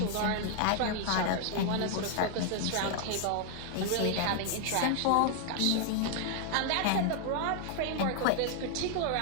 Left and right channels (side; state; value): both; different; correlation 0.00